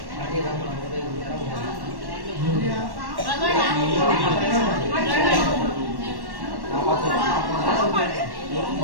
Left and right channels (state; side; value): late; left; 1.1 ms